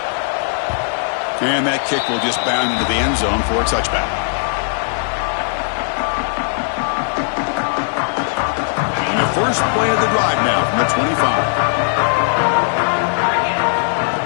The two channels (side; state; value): right; silent; digital silence